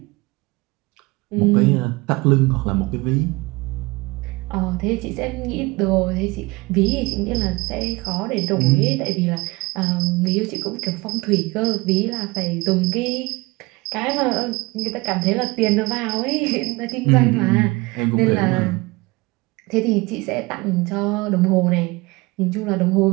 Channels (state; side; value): quieter; left; 23.6 dB